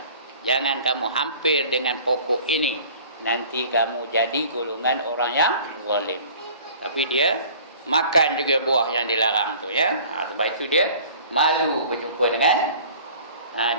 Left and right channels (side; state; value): both; inverted; correlation -0.47